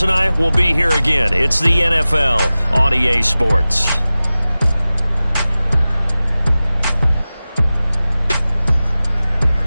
and I will be here again. It's the NFL on EA Sports.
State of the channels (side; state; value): both; inverted; correlation -0.97